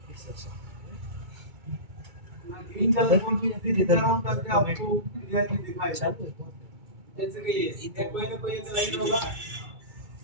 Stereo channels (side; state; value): left; late; 2.3 ms